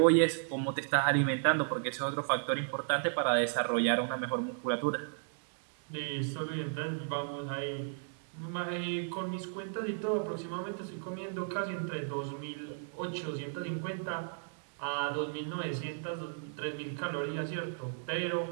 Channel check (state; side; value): silent; left; digital silence